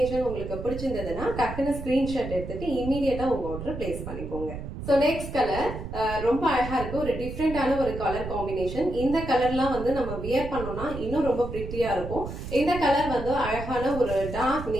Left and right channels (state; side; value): noise; right; rumble, 8 dB below the sound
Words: உங்களுக்கு பிடிச்சிருந்ததுன்னா டக்குன்னு ஸ்கிரீன்ஷாட் எடுத்துட்டு இமீடியட்டா உங்க ஆர்டர் பிளேஸ் பண்ணிக்கோங்க. சோ நெக்ஸ்ட் கலர் ரொம்ப அழகா இருக்கு, ஒரு டிஃப்ரெண்டான ஒரு கலர் காம்பினேஷன். இந்த கலர்லாம் வந்து நம்ம வியர் பண்ணோம்னா இன்னும் ரொம்ப பிரிட்டியா இருக்கும். இந்த கலர் வந்து அழகான ஒரு டார்க்